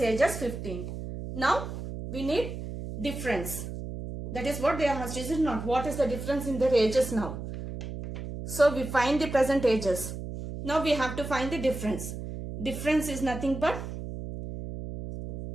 age as 15. Now we need difference. That is what they asked. Is it not? What is the difference in their ages now? So we find the present ages. Now we have to find the difference. Difference is nothing but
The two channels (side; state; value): right; noise; hum, 8 dB below the sound